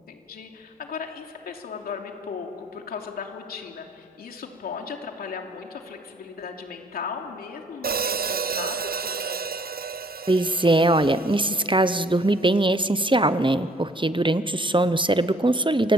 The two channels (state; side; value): normal; both; correlation 0.60